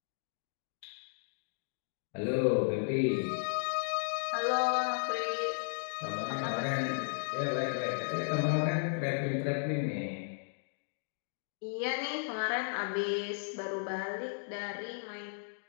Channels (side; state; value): right; silent; digital silence